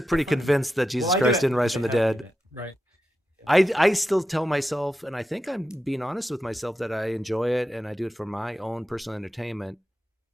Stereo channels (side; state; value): both; normal; correlation 0.89